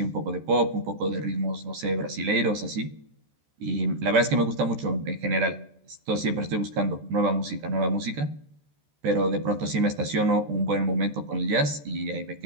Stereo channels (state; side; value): late; left; 14 ms